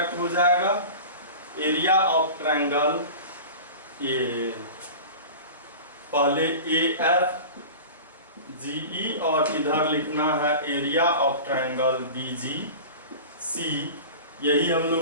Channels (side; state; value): both; inverted; correlation -0.34